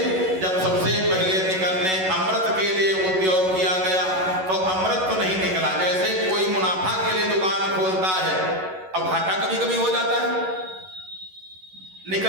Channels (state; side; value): late; left; 11 ms